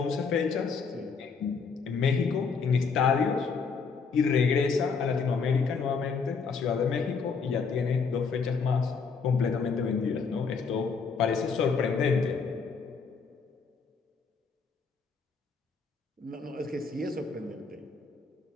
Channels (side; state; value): right; quieter; 5.2 dB